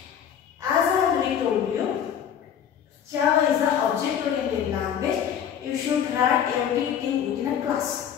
As I already told you, Java is an object-oriented language. You should write everything within a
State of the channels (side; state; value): right; quieter; 8.8 dB